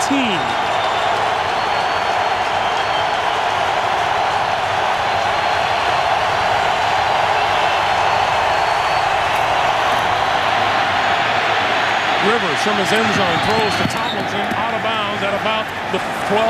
18. Rivers from his end zone throws to Tomlinson out of bounds at about the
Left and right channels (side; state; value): both; identical; correlation 1.00